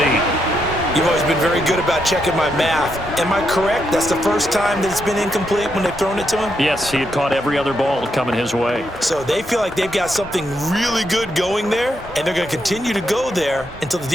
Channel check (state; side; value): normal; both; correlation 0.80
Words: You've always been very good about checking my math. Am I correct? That's the first time that it's been incomplete when they've thrown it to him? Yes, he had caught every other ball coming his way. So they feel like they've got something really good going there, and they're going to continue to go there until the